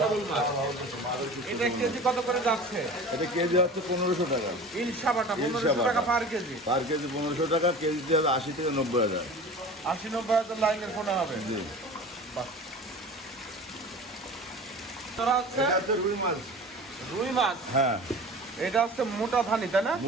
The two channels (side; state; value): both; normal; correlation 0.37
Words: সবল মাছ। এটা কেজি কত করে যাচ্ছে? এটা কেজি হচ্ছে 1500 টাকা। ইলশা বাটা 1500 ইলশা টাকা বাটা। পার কেজি। পার কেজি 1500 টাকা, কেজিতে হবে 80 থেকে 90,000। 80-90 লাইনের পোনা হবে। জি। বাহ। তোরা হচ্ছে এটা হচ্ছে রুই মাছ। রুই মাছ। হ্যাঁ, এটা হচ্ছে মোটা ধানি, তাই না?